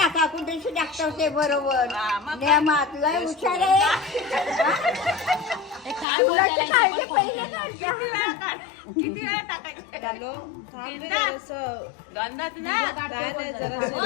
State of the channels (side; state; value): right; drops out; at 6.1 s